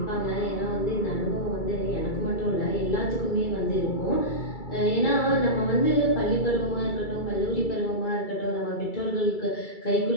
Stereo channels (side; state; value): right; late; 2.3 ms